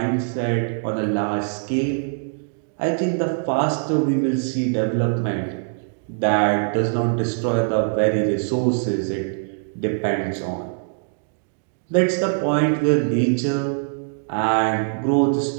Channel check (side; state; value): left; silent; digital silence